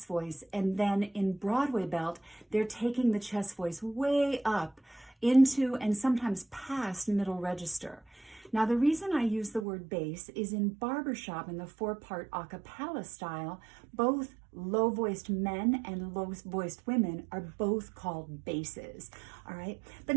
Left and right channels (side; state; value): left; drops out; at 9.7 s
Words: voice. And then in Broadway belt, they're taking the chest voice way up into and sometimes past middle register. Now, the reason I use the word bass is in barbershop in the 4-part a cappella style, both low-voiced men and low-voiced women are both called basses, all right? But